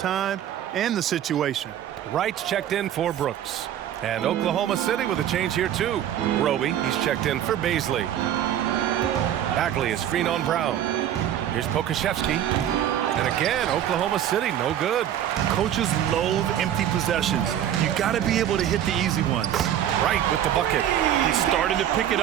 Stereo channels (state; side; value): quieter; left; 10.8 dB